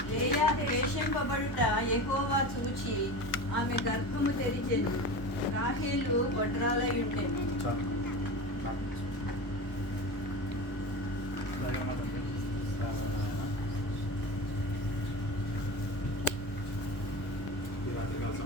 లేయా ద్వేషింపబడుట యెహోవా చూచి ఆమె గర్భము తెరిచెను. రాహేలు గొడ్రాలై ఉండెను.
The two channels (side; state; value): right; late; 1.1 ms